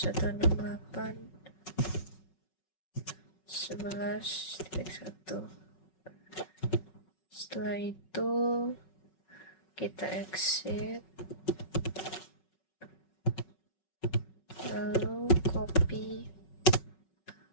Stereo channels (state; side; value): late; right; 5.4 ms